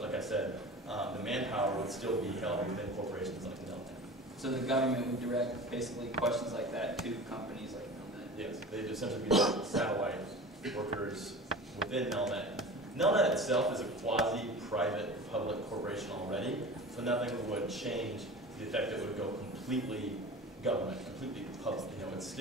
like I said, the manpower would still be held within corporations like Nelnet. So the government would direct basically questions like that to companies like Nelnet? Yes, they'd essentially be like satellite workers within Nelnet. Nelnet itself is a quasi-private public corporation already, so nothing would change to the effect that it would go completely government, completely public. You know, it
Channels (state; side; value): normal; both; correlation 0.36